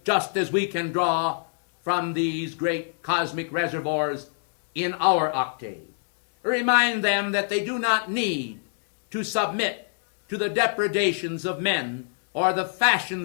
just as we can draw from these great cosmic reservoirs in our octave. Remind them that they do not need to submit to the depredations of men, or the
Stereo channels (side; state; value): right; silent; digital silence